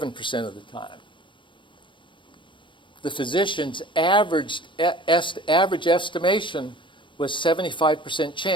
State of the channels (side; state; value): right; late; 0.24 ms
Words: of the time. The physician's average estimation was 75%